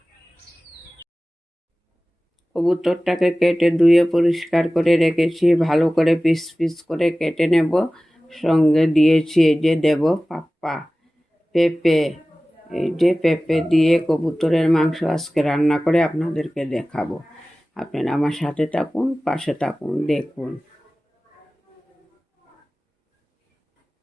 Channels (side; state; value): both; normal; correlation 0.97